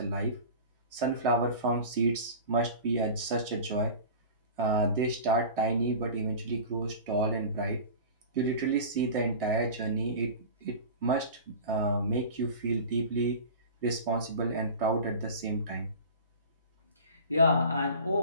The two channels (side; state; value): both; inverted; correlation -0.36